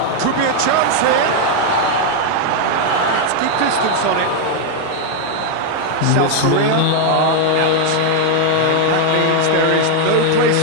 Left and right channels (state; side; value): different; both; correlation 0.00